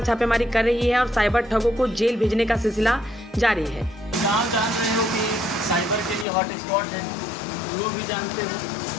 छापेमारी कर रही है और साइबर ठगों को जेल भेजने का सिलसिला जारी है। आप जान रहे हो कि साइबर के लिए हॉट स्पॉट है, लोग भी जानते हैं।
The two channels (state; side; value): drops out; right; at 6.2 s